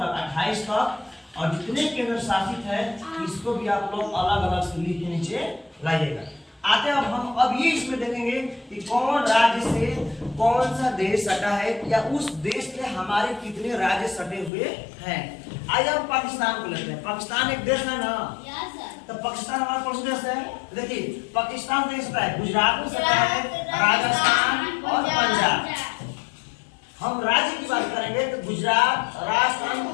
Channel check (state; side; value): drops out; right; at 14.5 s